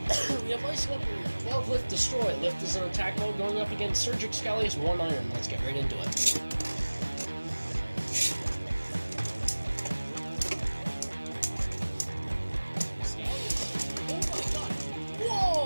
We have Vise leopard 12 lift destroy. Lift is in attack mode going up against Surge xcalius 1 iron. Let's get right into it.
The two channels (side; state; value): both; inverted; correlation -1.00